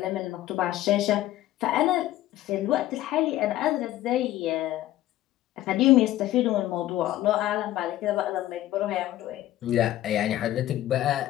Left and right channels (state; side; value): quieter; right; 14.4 dB